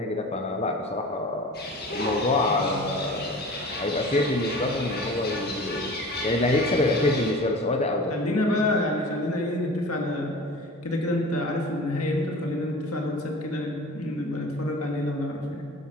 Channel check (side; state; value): both; normal; correlation 0.39